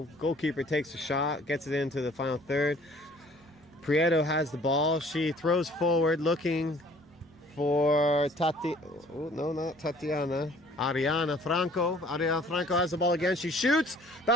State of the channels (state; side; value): normal; both; correlation 0.55